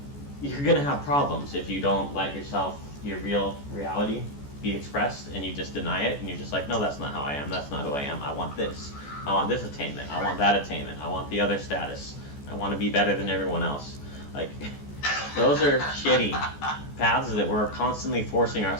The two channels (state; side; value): late; right; 14 ms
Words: you're going to have problems if you don't let your real reality be expressed, and you just deny it, and you're just like, no, that's not how I am, that's not who I am, I want this. I want this attainment, I want that attainment, I want the other status, I want to be better than everyone else. Like, those are shitty paths that we're constantly forcing